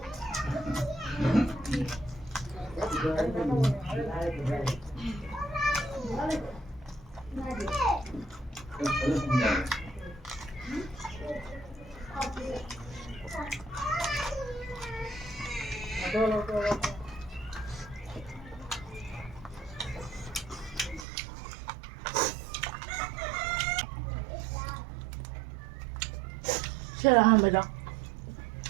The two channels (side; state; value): left; drops out; at 21.1 s